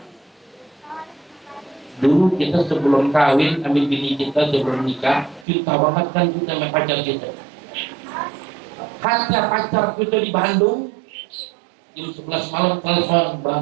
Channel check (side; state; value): left; drops out; at 5.5 s